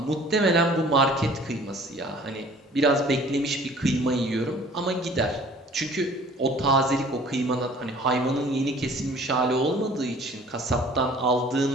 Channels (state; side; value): normal; both; correlation 0.51